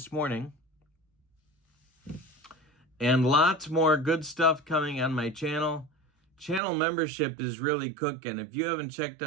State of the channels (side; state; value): left; drops out; at 6.6 s